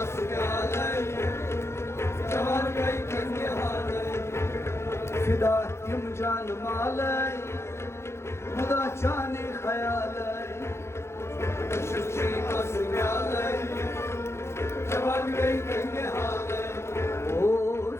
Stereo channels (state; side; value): late; right; 0.13 ms